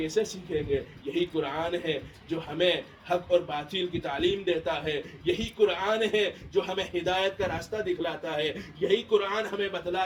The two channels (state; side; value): identical; both; correlation 1.00